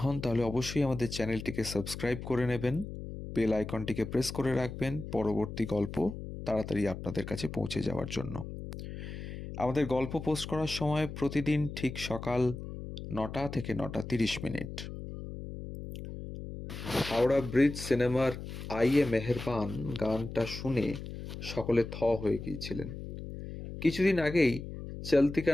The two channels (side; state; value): left; noise; hum, 9 dB below the sound